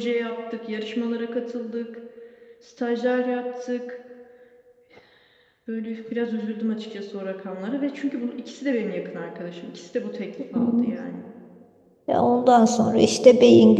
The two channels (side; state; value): both; identical; correlation 1.00